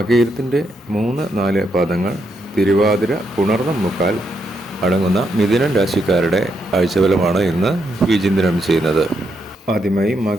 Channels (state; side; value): normal; both; correlation 0.79